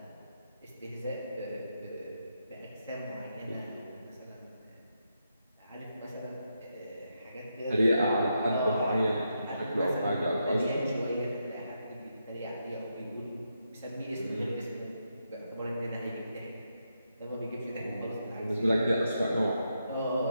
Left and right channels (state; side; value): inverted; both; correlation -0.83